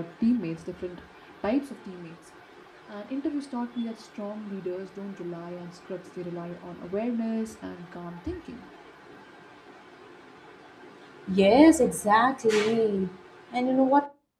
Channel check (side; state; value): both; identical; correlation 1.00